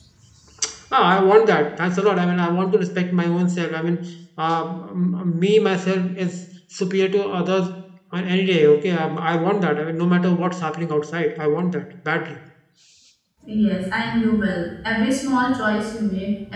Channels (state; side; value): identical; both; correlation 1.00